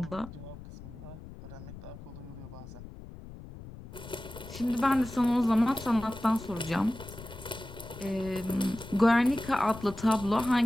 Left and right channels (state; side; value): noise; left; rumble, 14 dB below the sound